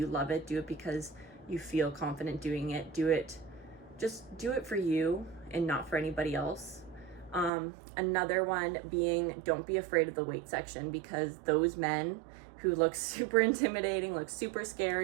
love it. Do it because you feel confident doing it. Just do it for you and not for anybody else. Another one being, don't be afraid of the weight section, because those men who look super intimidating, look super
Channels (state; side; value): drops out; left; at 7.5 s